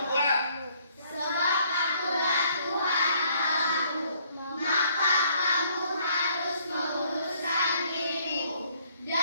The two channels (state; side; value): inverted; both; correlation -0.64